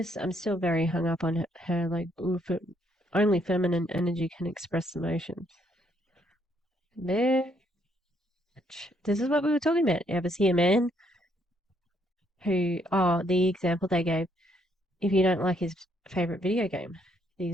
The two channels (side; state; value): both; normal; correlation 0.71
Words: still very hung up on her like, only feminine energy can express emotions. Bitch. This is what we were talking about. You ever see a man the example they gave, if you don't like his favorite video game, the